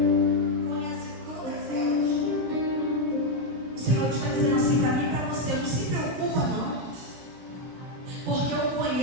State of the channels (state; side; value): late; left; 17 ms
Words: conhece todas elas. O Senhor está dizendo assim para mim e para você: não se preocupa não, porque eu